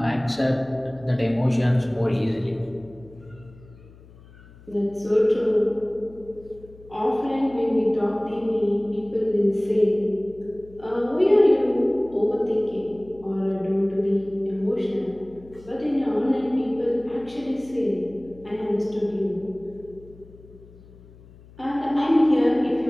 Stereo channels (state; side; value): noise; left; hum, 23 dB below the sound